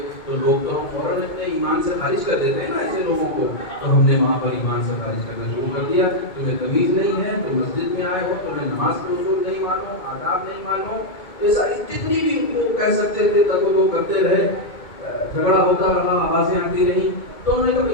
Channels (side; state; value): right; late; 2.2 ms